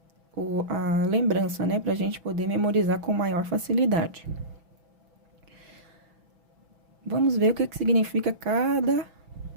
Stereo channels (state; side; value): late; left; 6.1 ms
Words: a lembrança, né? Para a gente poder memorizar com maior facilidade. Vamos ver o que significa cada